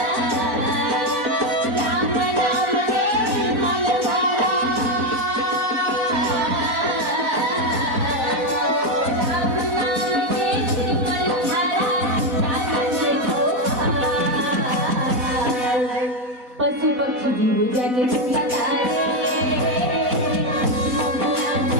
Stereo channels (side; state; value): left; late; 4.0 ms